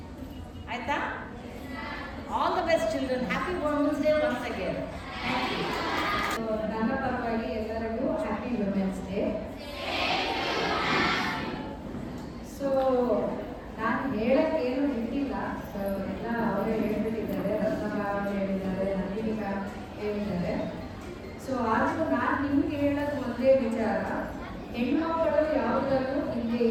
ಆಯಿತಾ? All the best children. Happy women's day once again. ನನ್ನ ಪರವಾಗಿ ಎಲ್ಲರಿಗೂ ಹ್ಯಾಪಿ ವುಮೆನ್ಸ್ ಡೇ. ಸೊ ನಾನು ಹೇಳಕ್ಕೇನು ಇಟ್ಟಿಲ್ಲ, ಎಲ್ಲ ಅವರೇ ಹೇಳ್ಬಿಟ್ಟಿದ್ದಾರೆ. ರತ್ನಮ್ಮ ಅವರು ಹೇಳಿದ್ದಾರೆ, ನಂದಿನಿ ಮ್ಯಾಮ್ ಹೇಳಿದ್ದಾರೆ. ಸೊ ಆದರೂ ನಾನು ನಿಮ್ಗೆ ಹೇಳೋದು ಒಂದೇ ವಿಚಾರ, ಹೆಣ್ಮಕ್ಕಳು ಯಾವುದಲ್ಲೂ ಹಿಂದೆ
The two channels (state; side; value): identical; both; correlation 1.00